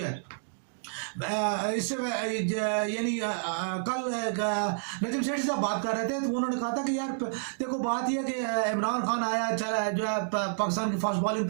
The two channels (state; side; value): silent; left; digital silence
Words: ہے اس سے یعنی کل نجم سیٹھی صاحب بات کر رہے تھے تو انہوں نے کہا تھا کہ یار دیکھو بات یہ کہ عمران خان آیا چلا جو ہے پاکستان کی فاسٹ بالنگ